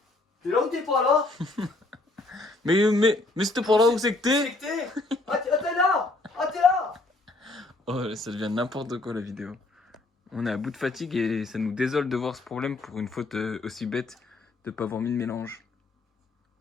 T'es là ou t'es pas là? Mais c'était pour là où c'est que t'es? C'est que t'es? Ah, t'es là! Ah, t'es là! Oh, ça devient n'importe quoi la vidéo. On est à bout de fatigue et ça nous désole de voir ce problème pour une faute aussi bête de pas avoir mis le mélange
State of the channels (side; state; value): right; quieter; 3.0 dB